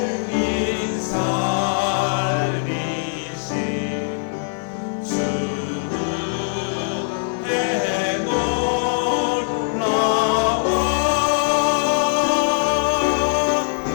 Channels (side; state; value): right; silent; digital silence